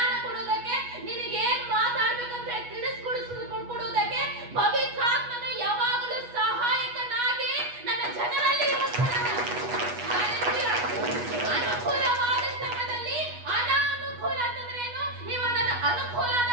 ಕೊಡುವುದಕ್ಕೆ, ನಿನಗೆ ಏನ್ ಮಾತಾಡ್ಬೇಕಂತ ತಿಳಿಸ್ಕೊಡುವುದಕ್ಕೆ ಪವಿತ್ರಾತ್ಮನು ಯಾವಾಗಲೂ ಸಹಾಯಕನಾಗಿ ನನ್ನ ಜನರಲ್ಲಿ ಇರುತ್ತಾನೆ. ಅನುಕೂಲವಾದ ಸಮಯದಲ್ಲಿ ಅನಾನುಕೂಲ ಅಂತಂದ್ರೆ ಏನು? ಇವಾಗ ನನ್ನ ಅನುಕೂಲ ಆದ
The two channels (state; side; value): late; left; 8.2 ms